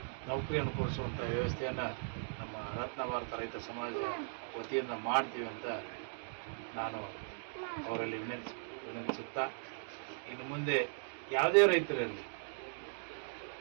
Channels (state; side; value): silent; left; digital silence